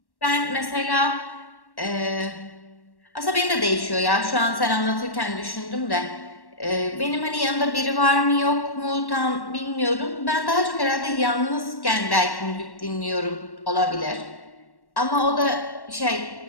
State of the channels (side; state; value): right; late; 1.1 ms